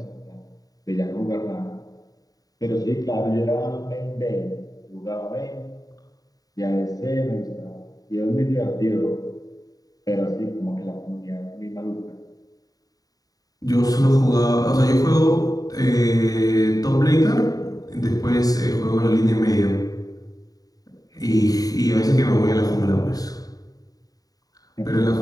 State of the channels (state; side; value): late; right; 0.18 ms